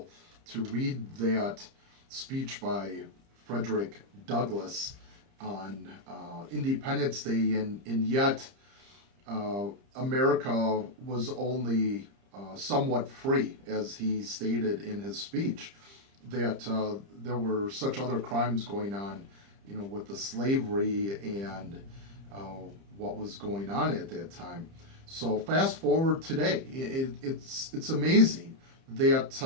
to read that speech by Frederick Douglass on Independence Day, and yet America was only somewhat free, as he stated in his speech, that there were such other crimes going on, with the slavery and what was going on at that time. So fast forward today, it's amazing that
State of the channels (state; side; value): late; left; 30 ms